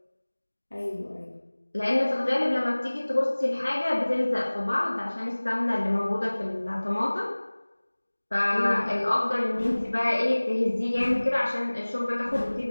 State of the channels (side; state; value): both; inverted; correlation -1.00